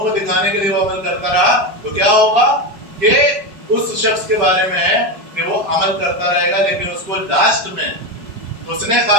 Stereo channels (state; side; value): late; left; 4.7 ms